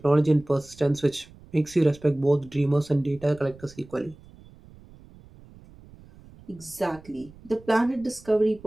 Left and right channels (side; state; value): right; noise; rumble, 23 dB below the sound